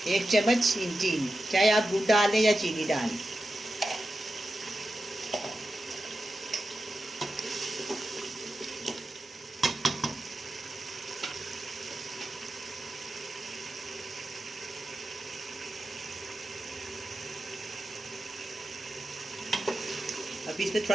1 चम्मच चीनी, चाहे आप दूध डाल दें या चीनी डालें। अब इसमें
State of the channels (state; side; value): normal; both; correlation 0.91